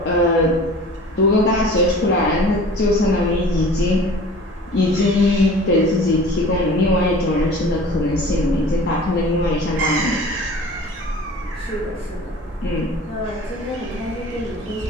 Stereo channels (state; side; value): normal; both; correlation 0.43